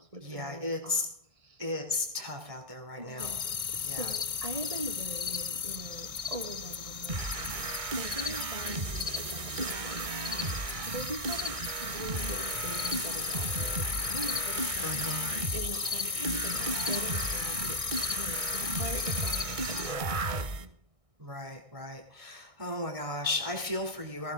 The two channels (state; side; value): late; left; 1.6 ms